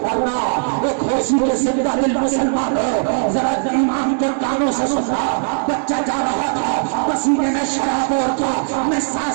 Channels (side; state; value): left; silent; digital silence